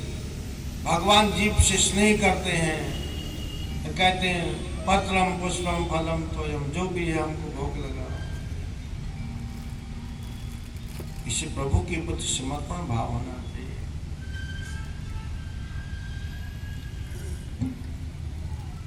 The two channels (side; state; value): both; identical; correlation 1.00